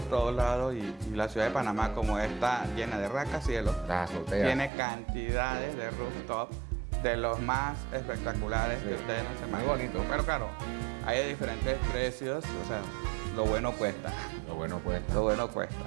todos lados y la ciudad de Panamá, como está llena de rascacielos, Las azoteas. tiene cantidades de rooftops de los más espectaculares Sí. que ustedes no se Muy imaginan. bonito. Pero claro, hay de diferentes precios, o sea, lo bueno cuesta. Lo bueno cuesta. Lo bueno cuesta.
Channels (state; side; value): drops out; left; at 4.7 s